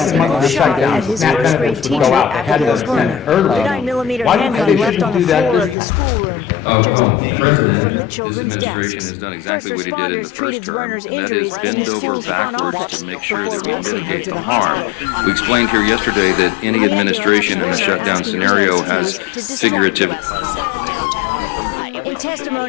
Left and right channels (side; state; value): right; drops out; at 5.8 s